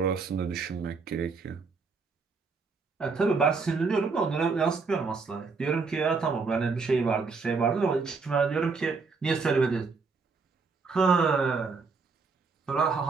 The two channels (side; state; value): left; quieter; 4.6 dB